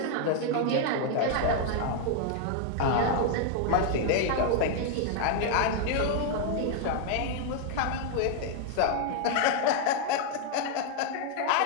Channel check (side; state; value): both; different; correlation 0.00